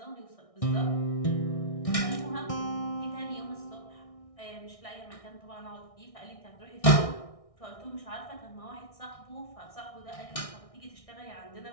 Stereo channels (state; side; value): late; right; 1.6 ms